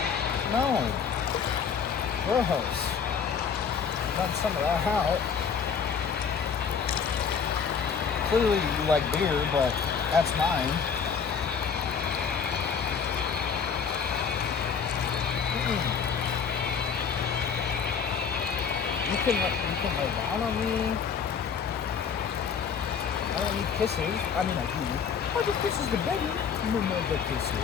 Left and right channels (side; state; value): right; quieter; 6.6 dB